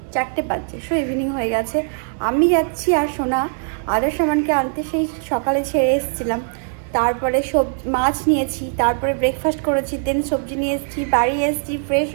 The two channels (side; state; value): left; silent; 65 dB below the other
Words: 4টে বাজছে, সো ইভিনিং হয়ে গেছে। আমি যাচ্ছি আর সোনা আদার সামানকে আনতে। সেই সকালে ছেড়ে এসেছিলাম, তারপরে মাছ নিয়েছি, তারপরে ব্রেকফাস্ট করেছি, দেন সবজি নিয়ে এসেছি, বাড়ি এসেছি, ফ্রেশ